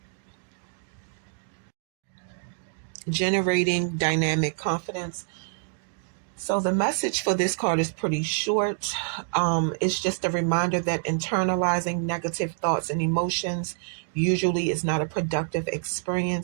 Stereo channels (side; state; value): left; silent; digital silence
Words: Generating dynamic confidence. So the message for this card is pretty short. It's just a reminder that internalizing negative thoughts and emotions usually is not a productive